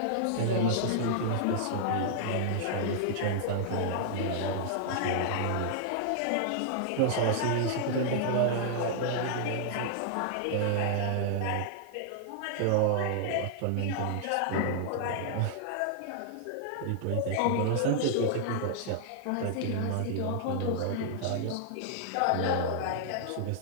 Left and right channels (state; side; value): different; both; correlation -0.01